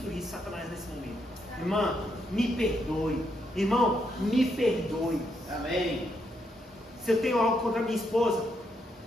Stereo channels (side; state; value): both; normal; correlation 0.78